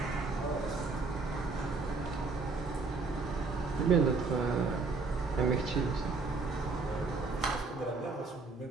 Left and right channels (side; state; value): left; quieter; 4.0 dB